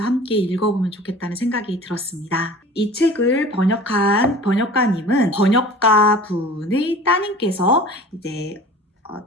함께 읽어보면 좋겠다는 생각이 들었습니다. 이 책을 번역한 번역가님은 번역가 분의 따님께서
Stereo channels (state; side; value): normal; both; correlation 0.42